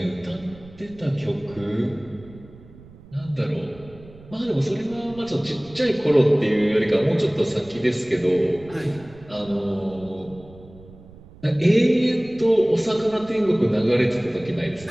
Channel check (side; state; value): right; noise; rumble, 21 dB below the sound